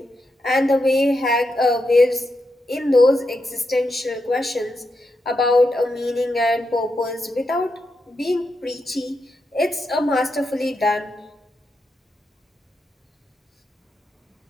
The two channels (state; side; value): normal; both; correlation 0.85